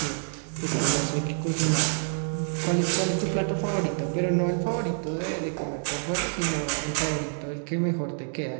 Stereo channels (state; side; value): silent; left; 60 dB below the other